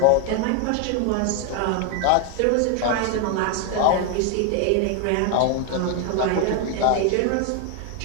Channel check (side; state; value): both; different; correlation 0.01